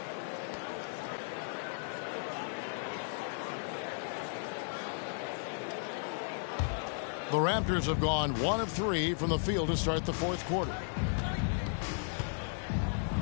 The Raptors have gone 1 of 3 from the field to start the 4th quarter.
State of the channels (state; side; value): silent; right; digital silence